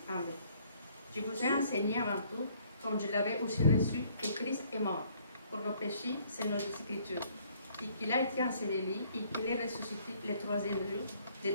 en vain. Je vous ai enseigné avant tout, comme je l'avais aussi reçu, que Christ est mort pour nos péchés, c'est nos Écritures, et qu'il a été enseveli et qu'il est ressuscité le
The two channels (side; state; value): both; inverted; correlation -0.62